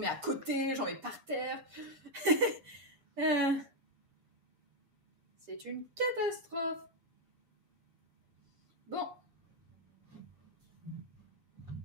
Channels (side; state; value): left; late; 7.0 ms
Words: à côté, j'en mets par terre. C'est une catastrophe. Bon.